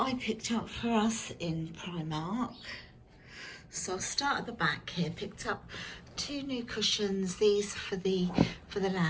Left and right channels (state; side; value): identical; both; correlation 1.00